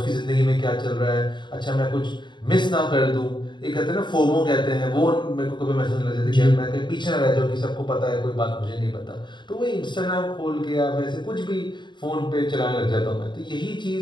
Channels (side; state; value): right; late; 0.22 ms